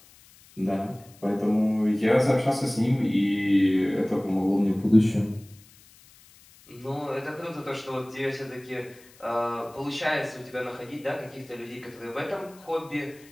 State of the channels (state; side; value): noise; left; hiss, 25 dB below the sound